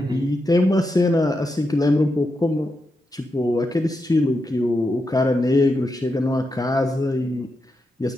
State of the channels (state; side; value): normal; both; correlation 0.86